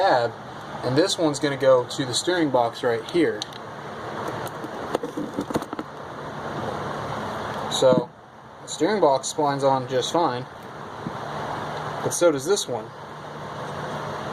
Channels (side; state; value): both; identical; correlation 1.00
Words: and this one's going to go to the steering box right here. So the steering box splines on just fine, but so does this one.